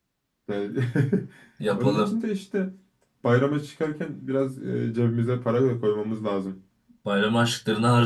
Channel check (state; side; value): identical; both; correlation 1.00